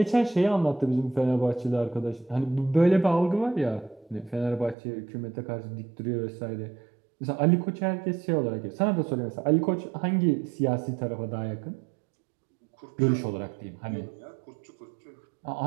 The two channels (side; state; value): left; drops out; at 4.8 s